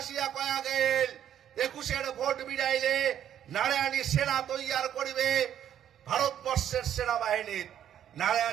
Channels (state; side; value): quieter; left; 10.2 dB